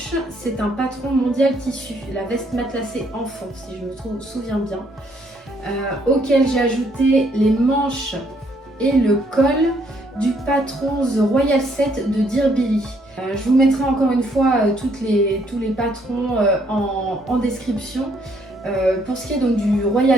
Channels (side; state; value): both; normal; correlation 0.68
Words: c'est un patron mondial tissu, la veste matelassée enfant, si je me souviens bien, auquel j'ai ajouté les manches et le col du patron The Royal Set de Dear Billy. Je vous mettrai encore une fois tous les patrons en description. Pour ce qui est donc du